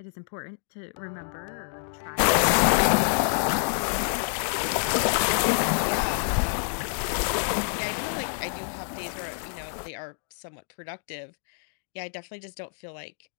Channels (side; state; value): right; silent; 60 dB below the other